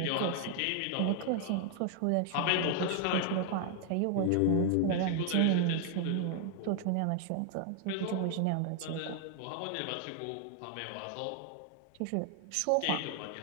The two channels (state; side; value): different; both; correlation 0.00